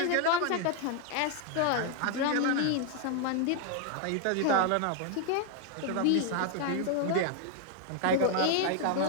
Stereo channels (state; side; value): different; both; correlation 0.00